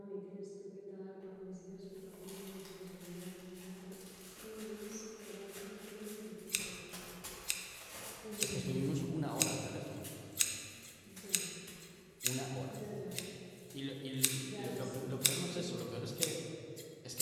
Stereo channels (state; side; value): identical; both; correlation 1.00